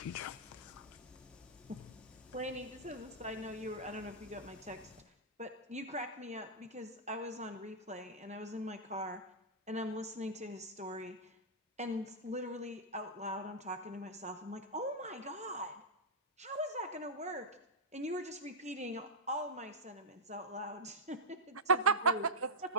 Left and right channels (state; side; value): normal; both; correlation -0.08